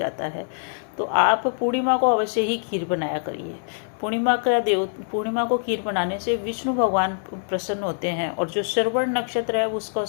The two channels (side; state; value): right; silent; digital silence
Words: है। तो आप पूर्णिमा को अवश्य ही खीर बनाया करिए। पूर्णिमा को खीर बनाने से विष्णु भगवान प्रसन्न होते हैं, और जो श्रवण नक्षत्र है उसका